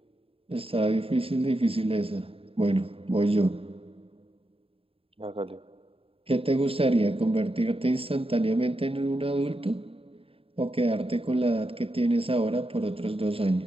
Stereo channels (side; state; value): left; late; 0.27 ms